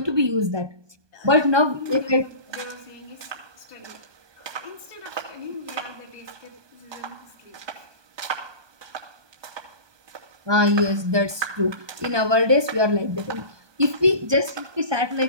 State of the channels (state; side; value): late; left; 1.2 ms